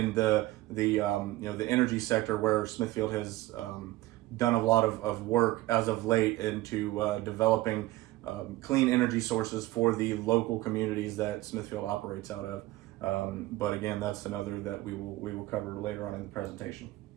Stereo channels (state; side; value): quieter; left; 17.9 dB